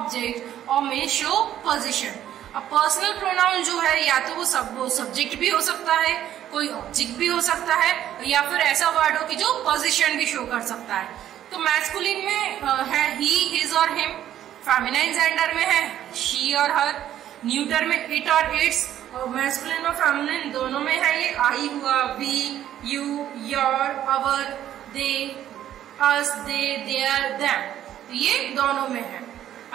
or may show position. अब personal pronoun जो है या तो वो सब्जेक्ट भी हो सकता है, कोई ऑब्जेक्ट भी हो सकता है, या फिर ऐसा वर्ड हो कि जो पोजीशन भी शो कर सकता है। तो मैस्कुलिन में है ही, हिज और हिम, फेमिनाइन जेंडर में है शी और हर, न्यूटर में इट और इट्स, और मैस्कुलिन और फेमिनाइन दोनों में है ये आई हुआ, we, you, your, our, they, us, they, their, them, तो ये दोनों में है।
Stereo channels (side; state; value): left; quieter; 11.5 dB